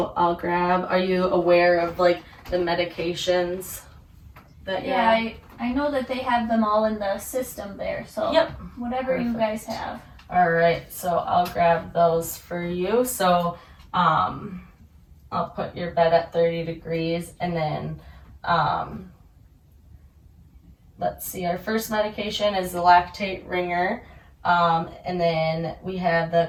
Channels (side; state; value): both; identical; correlation 1.00